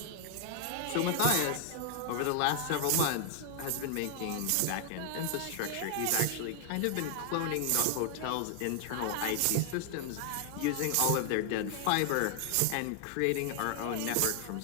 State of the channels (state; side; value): different; both; correlation 0.00